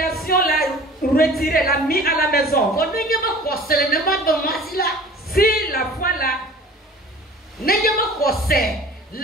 l'a retiré, l'a mis à la maison. Si la foi là,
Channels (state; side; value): normal; both; correlation 0.45